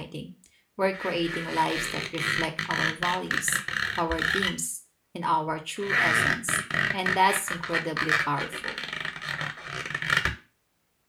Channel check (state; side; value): identical; both; correlation 1.00